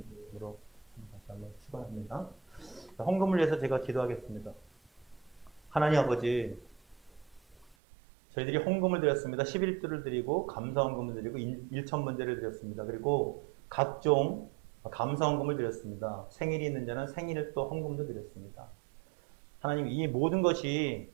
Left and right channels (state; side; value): drops out; left; at 7.8 s